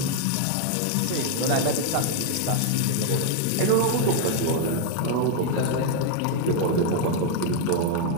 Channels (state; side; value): different; both; correlation 0.00